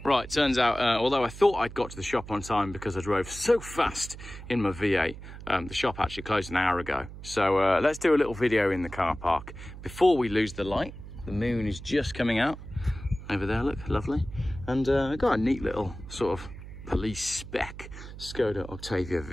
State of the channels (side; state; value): right; noise; hum, 13 dB below the sound